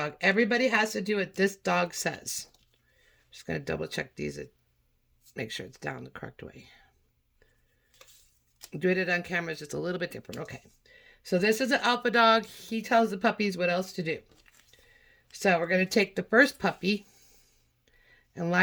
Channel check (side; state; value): both; identical; correlation 1.00